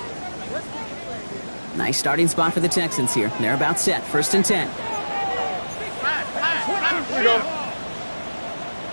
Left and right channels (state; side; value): inverted; both; correlation -1.00